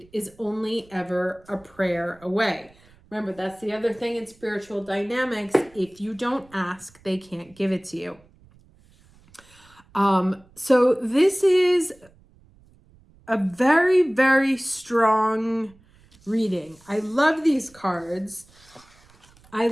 is only ever a prayer away. Remember, that's the other thing in spiritual dynamics. If you don't ask, they can't give it to you. So this is a very, very strong reading. I love these cards. I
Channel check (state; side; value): noise; right; rumble, 29 dB below the sound